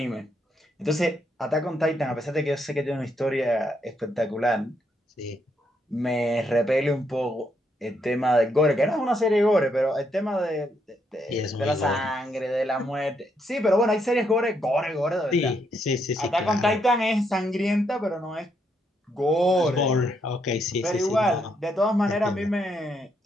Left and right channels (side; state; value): both; normal; correlation 0.76